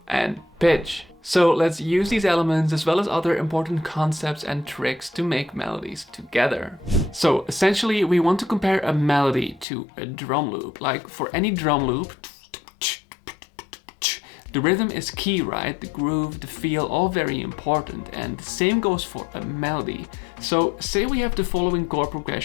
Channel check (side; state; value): right; drops out; at 9.7 s